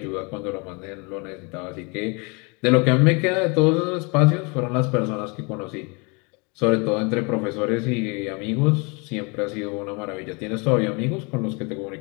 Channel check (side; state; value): right; quieter; 30.8 dB